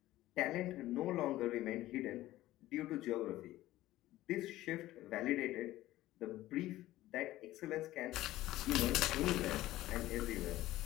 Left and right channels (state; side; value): quieter; right; 15.8 dB